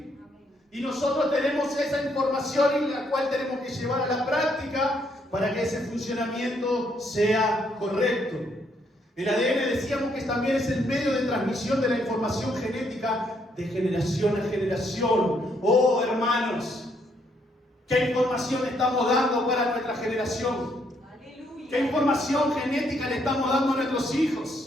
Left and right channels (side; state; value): both; normal; correlation 0.72